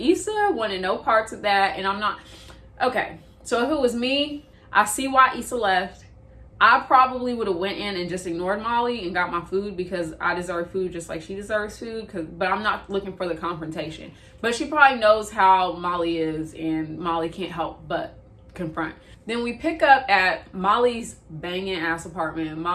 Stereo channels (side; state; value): both; identical; correlation 1.00